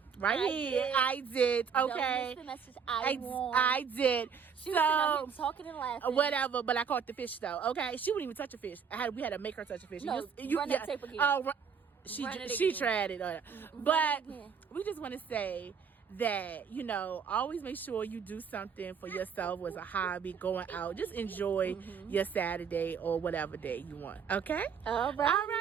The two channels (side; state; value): left; quieter; 6.7 dB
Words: Right here. I did. Don't Okay. miss the message. I won. I did. She was sitting out here talking and laughing. Whatever, but I caught the fish though. Okay, she wouldn't even touch a fish. We had to make her touch a fish. No, run that tape again. She Run it she again. tried it. But we just want to say that, always make sure you do something for yourself as a hobby, going out. Just enjoy your Saturday or whatever day you want. Okay? All right. All